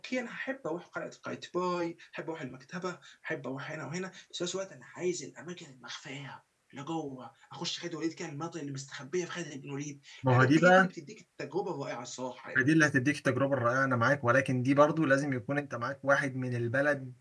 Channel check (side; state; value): both; identical; correlation 1.00